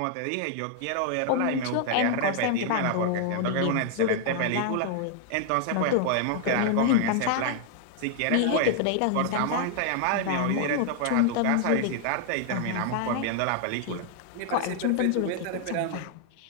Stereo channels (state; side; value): different; both; correlation 0.00